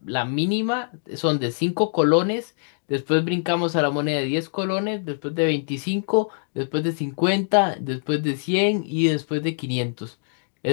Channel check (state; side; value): silent; right; digital silence